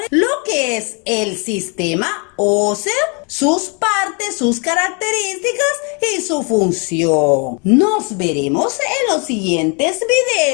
lo que es el sistema óseo, sus partes, sus características y su función. Nos veremos en los siguientes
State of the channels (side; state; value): right; quieter; 34.5 dB